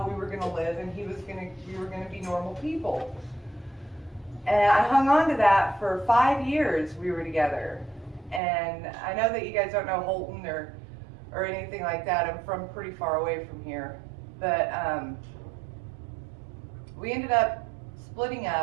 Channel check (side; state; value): left; drops out; at 8.4 s